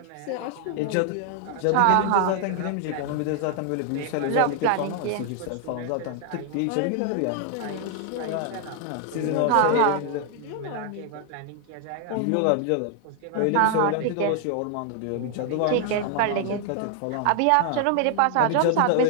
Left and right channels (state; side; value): different; both; correlation 0.00